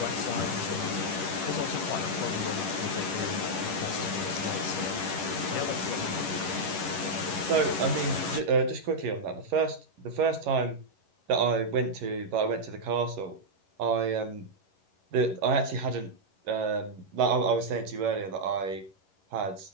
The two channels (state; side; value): late; left; 11 ms